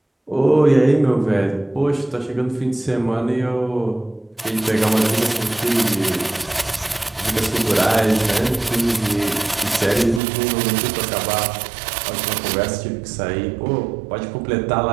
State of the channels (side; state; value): left; drops out; at 10.2 s